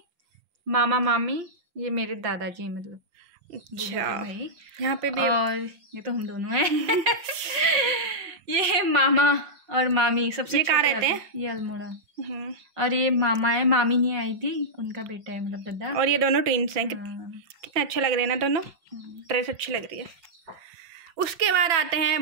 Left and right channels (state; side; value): late; left; 5.4 ms